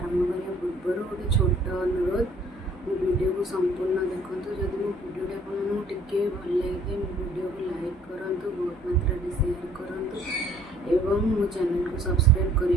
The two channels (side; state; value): both; normal; correlation 0.58